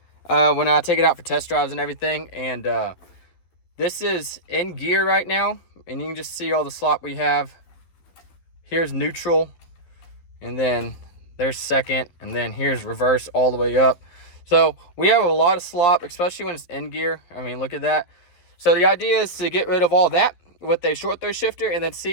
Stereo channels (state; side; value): late; right; 12 ms